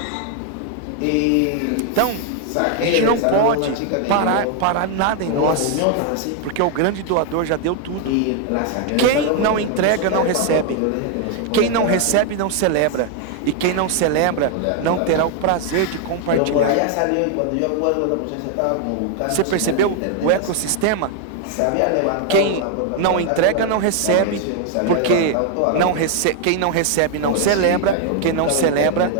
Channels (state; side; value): different; both; correlation 0.00